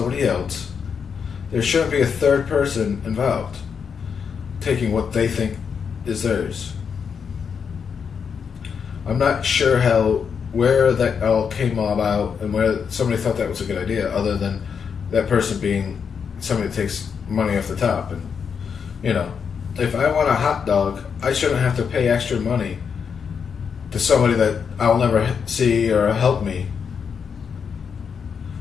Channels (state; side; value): quieter; right; 6.5 dB